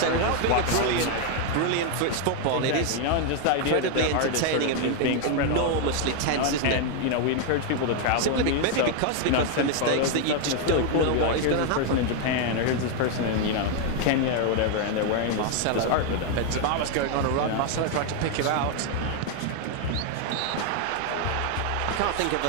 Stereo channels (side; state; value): both; different; correlation 0.01